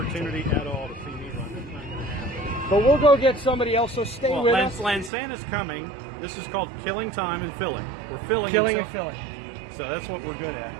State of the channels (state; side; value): drops out; left; at 5.1 s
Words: at all to see me run. That's not going to happen. But we'll go get somebody else, so stay Well, with us. Lansana's coming. This is called killing time and filling. We're filling Killing until- and filling. So that's what we're good at.